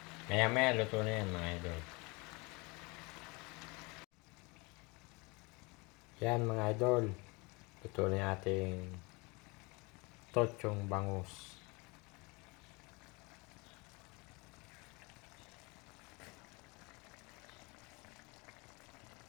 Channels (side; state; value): right; quieter; 27.3 dB